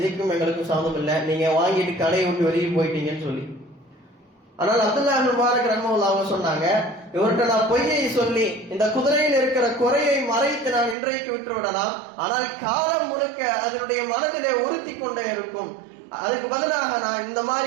எங்களுக்கும் சம்மதம் இல்லை, நீங்க வாங்கிட்டு கடையை விட்டு வெளியே போயிட்டீங்கன்னு சொல்லி. ஆனால் அப்துல்லா இப்னு முபாரக் ரஹ்மத்துல்லாஹி அவங்க சொன்னாங்க, இவர்கிட்ட நான் பொய்யை சொல்லி இந்த குதிரையில் இருக்கிற குறையை மறைத்து நான் இன்றைக்கு விட்டு விடலாம், ஆனால் காலம் முழுக்க அதனுடைய மனதிலே உறுத்தி கொண்டே இருக்கும். அதுக்கு பதிலாக நான் இந்த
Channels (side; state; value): left; drops out; at 11.0 s